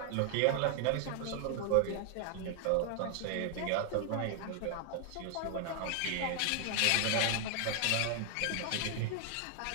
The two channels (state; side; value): different; both; correlation 0.00